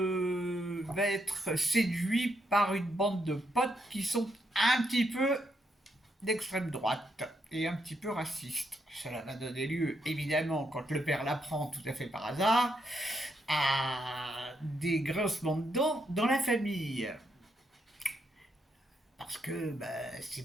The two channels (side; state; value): both; normal; correlation 0.79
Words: être séduit par une bande de potes qui sont un petit peu d'extrême droite et un petit peu raciste. Cela va donner lieu, évidemment, quand le père l'apprend tout à fait par hasard, à des grincements de dents dans la famille. Parce que bah,